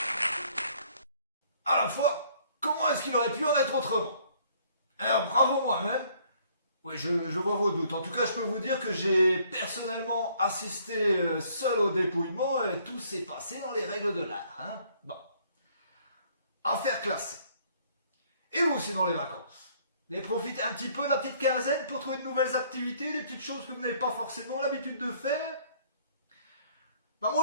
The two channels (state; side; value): inverted; both; correlation -0.62